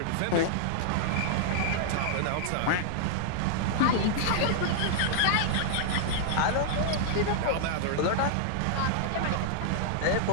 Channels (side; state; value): both; different; correlation -0.01